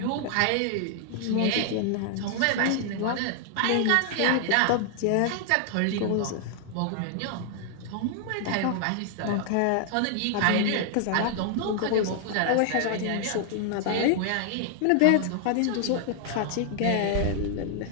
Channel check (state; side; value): different; both; correlation 0.00